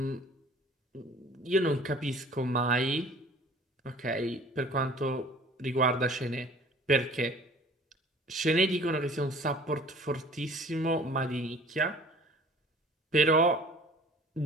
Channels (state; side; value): normal; both; correlation 0.49